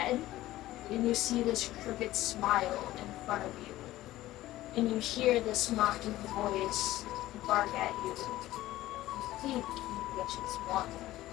And you see this crooked smile in front of you. And you hear this mocking voice bark at you. I think you bitches want to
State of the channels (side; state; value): right; quieter; 15.8 dB